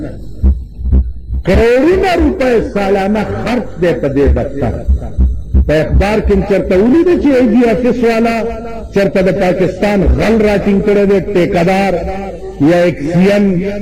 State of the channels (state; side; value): identical; both; correlation 1.00